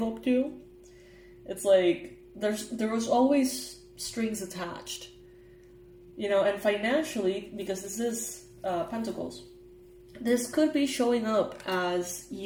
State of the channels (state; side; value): identical; both; correlation 1.00